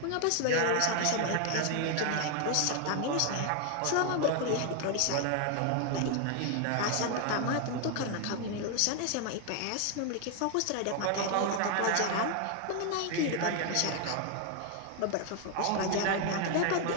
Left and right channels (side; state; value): both; different; correlation 0.00